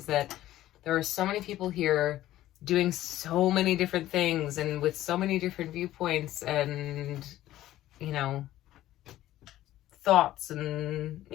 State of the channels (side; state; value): right; quieter; 14.3 dB